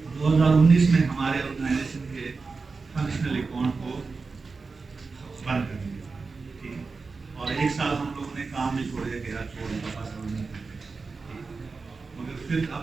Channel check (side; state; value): left; quieter; 4.3 dB